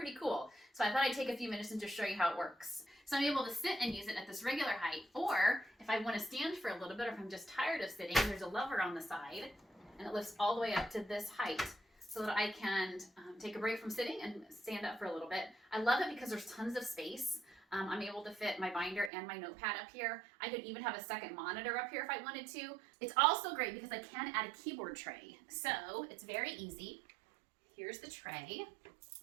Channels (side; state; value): left; drops out; at 19.1 s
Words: cool. So I thought I'd take a few minutes and just show you how it works. So I'm able to sit and use it at this regular height, or if I want to stand for a little bit, or if I'm just tired of sitting, there's a lever on the side, and it lifts all the way up to this height so that I can take a break from sitting and stand up for a little bit. I love it because there's tons of space. I'm able to fit my binder and my notepad up here. I could even have a second monitor up here if I wanted to. It's also great because I can add a keyboard tray. So it's very easy. Here's the tray.